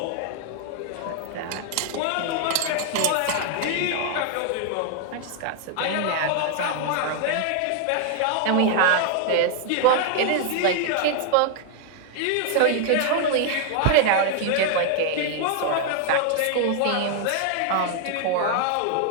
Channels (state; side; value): different; both; correlation 0.00